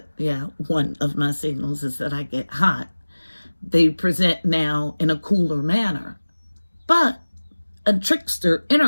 I get hot. They present now in a cooler manner. But a trickster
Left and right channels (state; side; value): inverted; both; correlation -1.00